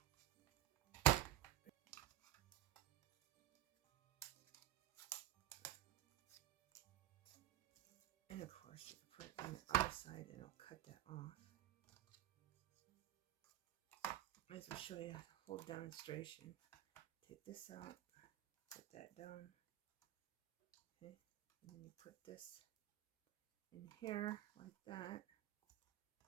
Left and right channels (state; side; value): quieter; left; 13.8 dB